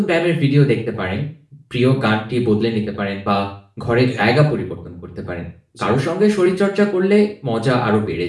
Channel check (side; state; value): both; identical; correlation 1.00